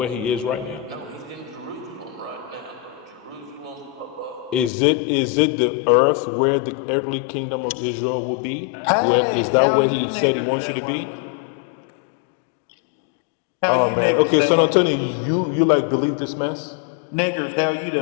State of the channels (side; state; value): right; drops out; at 4.7 s